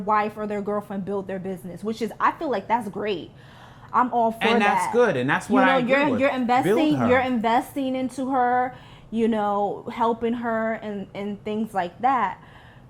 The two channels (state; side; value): identical; both; correlation 1.00